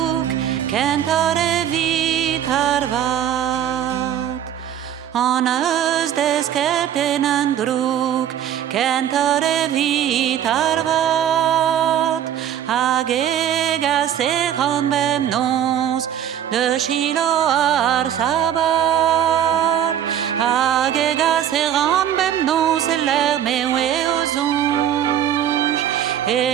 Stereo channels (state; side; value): quieter; left; 10.2 dB